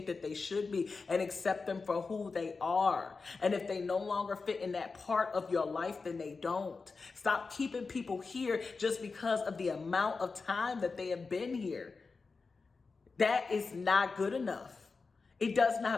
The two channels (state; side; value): quieter; right; 4.4 dB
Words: that they should be and accept them for who they are. And if they no longer fit in that part of your life, then they don't. Stop keeping people here just because of the amount of time that they have been here. That is not good enough. It does